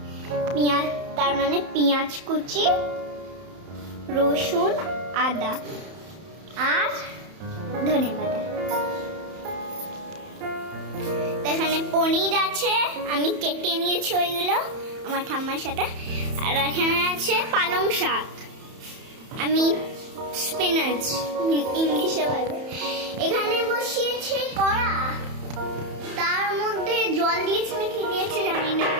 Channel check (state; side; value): late; left; 31 ms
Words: পেঁয়াজ, তার মানে পেঁয়াজ কুচি, রসুন, আদা আর ধনে পাতা। এখানে পনির আছে, আমি কেটে নিয়েছি ওইগুলো আমার ঠাম্মার সাথে। আর এখানে আছে পালং শাক, আমি স্পিনাচ ইংলিশে বলে। এখানে বসিয়েছে কড়া, তার মধ্যে জল দিয়েছে না কি দিয়েছে জানি না,